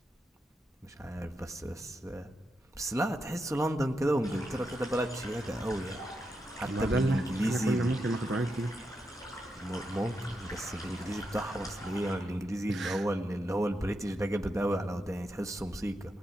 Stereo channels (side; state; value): both; normal; correlation 0.85